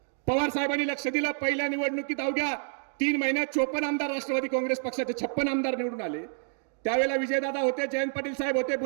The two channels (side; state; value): left; silent; 59 dB below the other